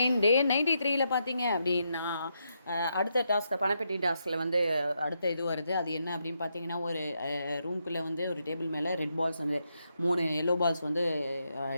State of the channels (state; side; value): inverted; both; correlation -0.81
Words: டே 93ல் பார்த்தீங்க அப்படின்னா அடுத்த டாஸ்க்கு பணப்பெட்டி டாஸ்கில் வந்து அடுத்த இது வருது. அது என்ன அப்படின்னு பார்த்தீங்கன்னா, ஒரு ரூம்குள்ளே வந்து ஒரு டேபிள் மேலே ரெட் பால்ஸ் வந்து 3 எல்லோ பால்ஸ் வந்து